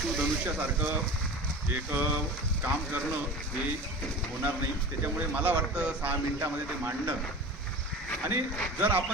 एक काम करणं हे होणार नाही. त्याच्यामुळे मला वाटतं 6 मिनिटामध्ये ते मांडणं. आणि जर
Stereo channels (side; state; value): both; normal; correlation 0.34